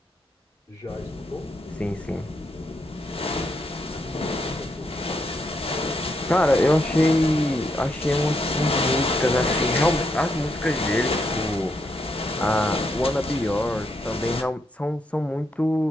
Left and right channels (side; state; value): both; normal; correlation 0.79